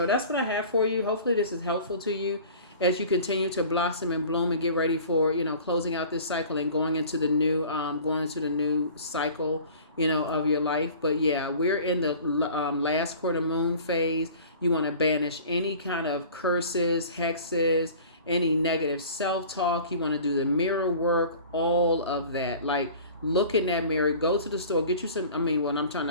that's what I have for you. Hopefully, this is helpful to you as you continue to blossom and bloom and get ready for closing out this cycle and going into the new cycle of your life. But yeah, we're in the last quarter moon phase. You want to banish any kind of curses, hexes, any negative self-talk. You want to do the mirror work, all of that. Like, look in that mirror, go to the store, get you some. I mean, when I'm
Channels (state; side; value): inverted; both; correlation -0.44